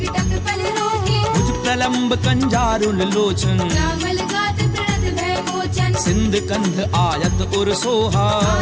टक पल रोकी भुज प्रलंब कंजारुल लोचन रामल गात प्रणत लोचन सिंध कंध आयत उर सोहा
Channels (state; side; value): identical; both; correlation 1.00